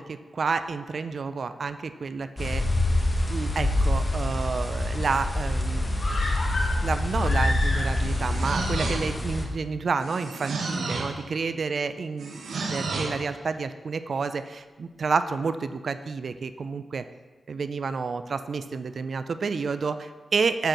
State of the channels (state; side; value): normal; both; correlation 0.89